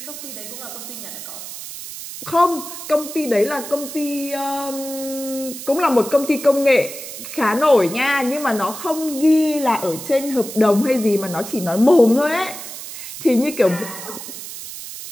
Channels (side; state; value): right; noise; hiss, 11 dB below the sound